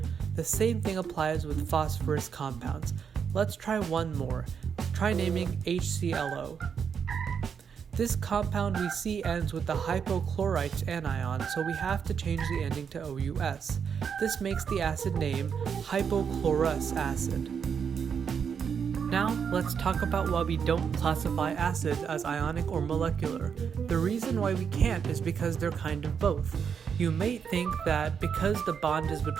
The same thing applies with phosphorus compounds. Let's try one more. Try naming HClO. This compound we see ends with the hypochlorite anion, so we have to change the ending to OUS. This makes the acid name hypochlorous acid. Now, let's talk about why we don't classify acids as ionic or molecular. The reason why we can't is because they're kind of both. You may think that because the bond is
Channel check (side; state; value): left; quieter; 6.9 dB